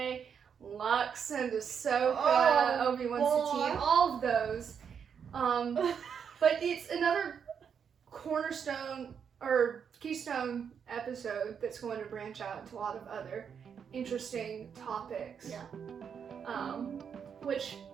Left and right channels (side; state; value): left; quieter; 7.2 dB